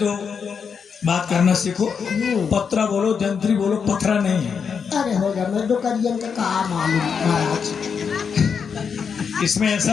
बात करना सीखो। पत्रा बोलो, जंत्री बोलो, पथरा नहीं है। अरे होगा मैं डोकरियन का कहा मालूम महाराज। इसमें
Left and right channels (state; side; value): quieter; right; 6.4 dB